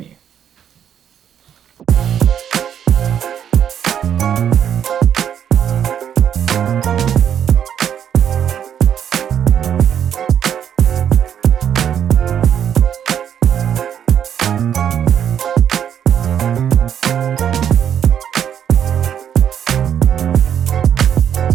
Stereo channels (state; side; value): quieter; left; 9.1 dB